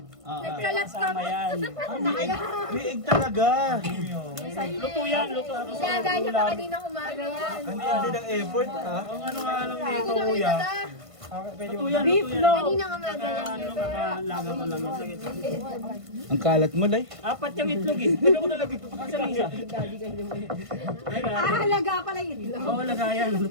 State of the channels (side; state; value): left; late; 1.5 ms